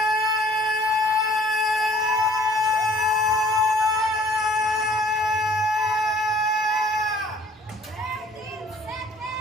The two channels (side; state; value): both; normal; correlation 0.55